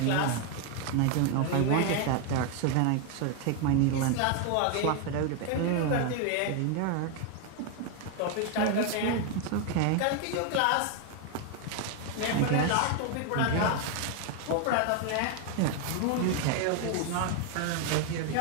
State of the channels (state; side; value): different; both; correlation 0.00